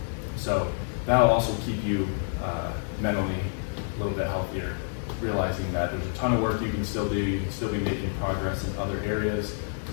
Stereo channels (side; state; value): right; silent; digital silence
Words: So that'll also keep you mentally a little bit healthier, realizing that there's a ton of work you can still do, you can still be making progress in other areas